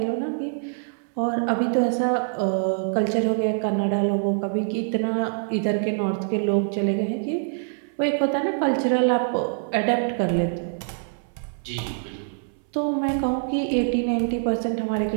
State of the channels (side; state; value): left; silent; 62 dB below the other